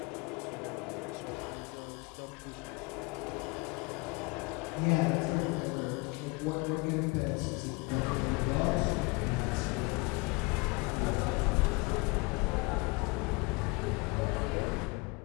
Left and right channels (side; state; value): right; quieter; 27.0 dB